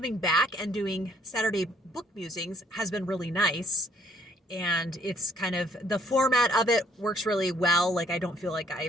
back and doing Saturday Book Musings has been really nice. And it's kind of, the format of it works really well. Like, I don't feel like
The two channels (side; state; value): both; normal; correlation 0.65